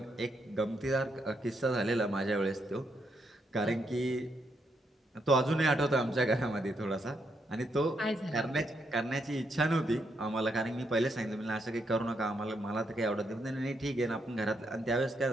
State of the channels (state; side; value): normal; both; correlation 0.78